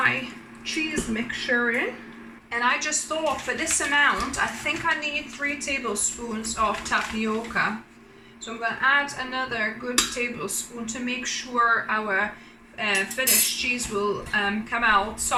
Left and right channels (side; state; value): both; identical; correlation 1.00